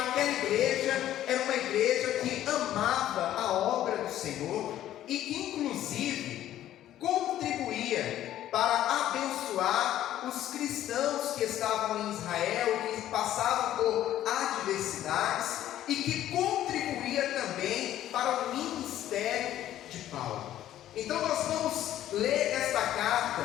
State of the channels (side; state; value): right; quieter; 12.5 dB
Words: igreja era uma igreja que amava a obra do Senhor e que inclusive contribuía para abençoar os cristãos que estavam em Israel, que passavam por adversidades, e que contribuía também para o ministério de Paulo. Então nós vamos ler esta